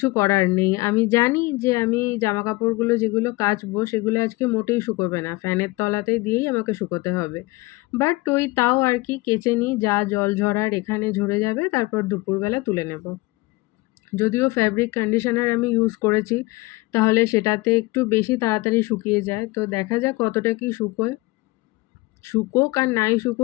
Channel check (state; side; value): quieter; right; 22.1 dB